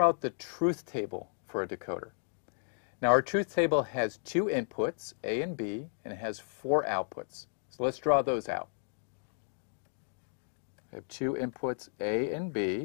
out the truth table for a decoder. Now our truth table has 2 inputs, A and B, and it has 4 outputs. So let's draw those out. I have 2 inputs, A and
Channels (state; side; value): silent; right; digital silence